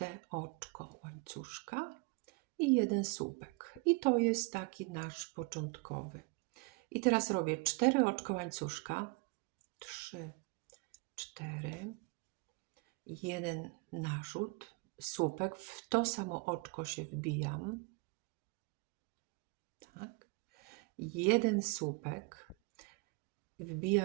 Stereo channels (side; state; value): left; quieter; 27.7 dB